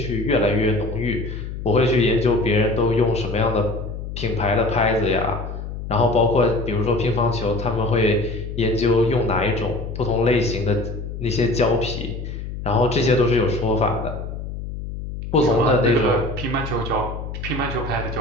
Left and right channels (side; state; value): left; noise; hum, 8 dB below the sound